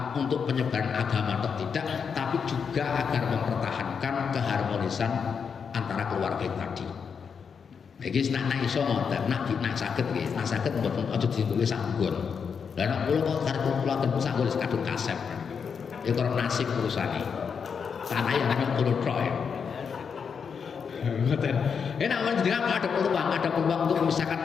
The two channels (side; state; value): right; quieter; 6.3 dB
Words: untuk penyebaran agama atau tidak, tapi juga agar mempertahankan keharmonisan antara keluarga tadi. Iki nak iso ngoten, nak saged nggih, nak saged mboten aja ditulis sanggon. Lah nek kula kok karep kula ten sanggon kadung kasep. Ya karo nasib urusane. Tanah yang namanya kulo tok ya. Ngoten. Enak menjenengan ada peluang untuk